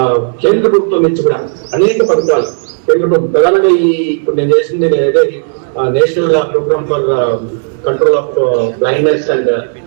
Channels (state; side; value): silent; left; digital silence